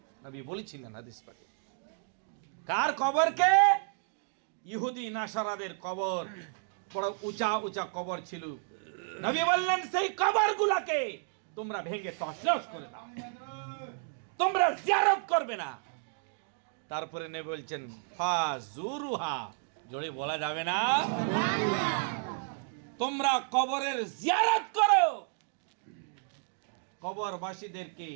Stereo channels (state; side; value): silent; left; 56 dB below the other